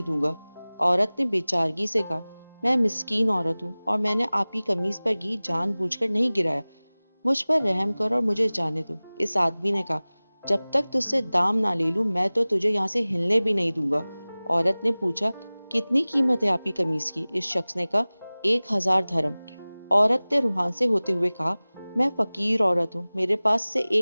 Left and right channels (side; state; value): both; inverted; correlation -0.99